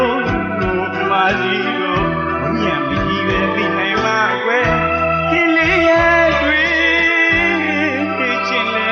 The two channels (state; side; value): identical; both; correlation 1.00